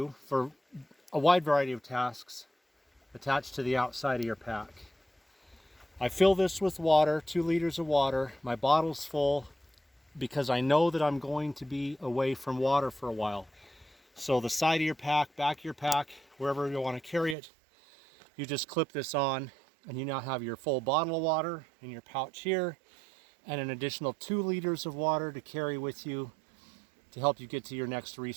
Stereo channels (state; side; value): drops out; left; at 17.4 s